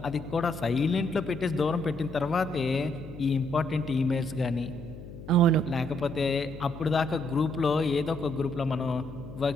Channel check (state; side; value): noise; left; hum, 13 dB below the sound